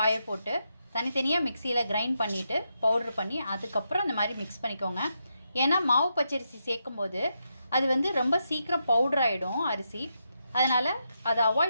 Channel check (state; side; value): inverted; both; correlation -0.83